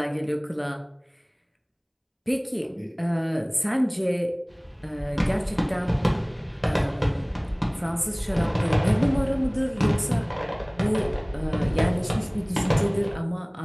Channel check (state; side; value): identical; both; correlation 1.00